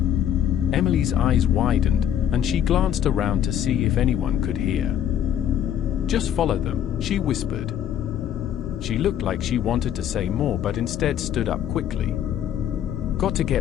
Emily's eyes widened, and she glanced around to see if anyone could hear. Just follow them, she whispered. She looked like she wanted to say more but instead stood up quickly. Got to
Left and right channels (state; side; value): quieter; right; 10.1 dB